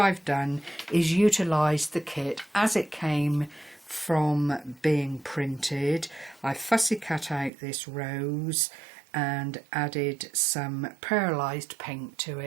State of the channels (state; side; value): drops out; left; at 7.5 s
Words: I've done is utilise the kit as it came from being printed. I fussy cut out this rose and added some pearlised paint to